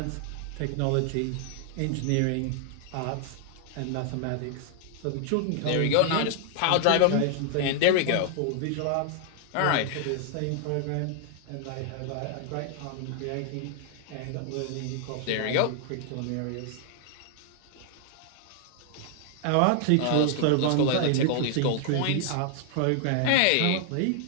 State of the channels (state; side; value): different; both; correlation 0.00